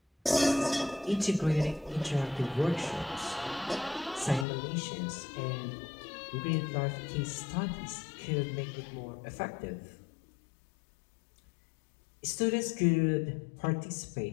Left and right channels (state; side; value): drops out; right; at 4.5 s